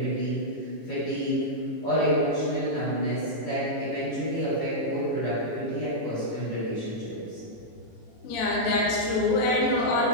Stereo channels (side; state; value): right; late; 18 ms